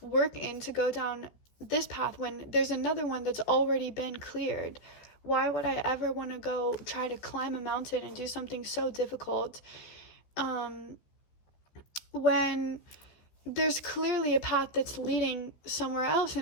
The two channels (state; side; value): late; right; 14 ms